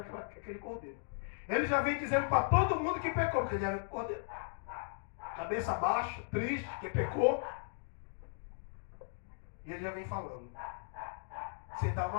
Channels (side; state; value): right; silent; digital silence